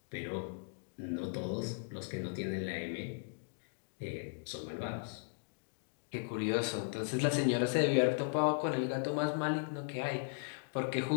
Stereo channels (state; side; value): silent; right; digital silence